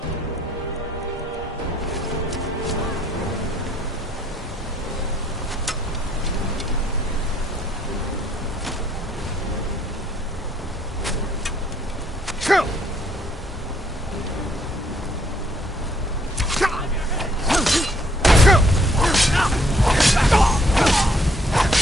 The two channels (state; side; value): normal; both; correlation 0.67